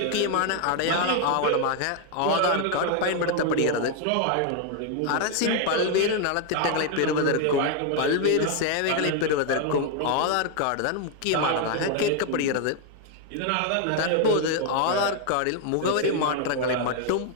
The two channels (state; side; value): different; both; correlation 0.00